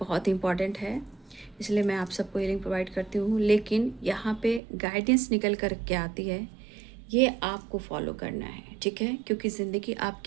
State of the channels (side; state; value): left; drops out; at 4.6 s